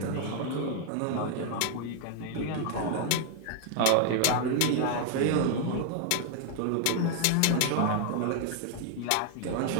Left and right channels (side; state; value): both; different; correlation 0.00